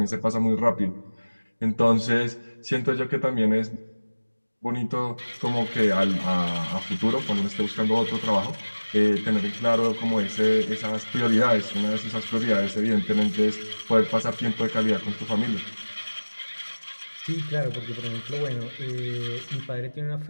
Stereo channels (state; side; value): inverted; both; correlation -1.00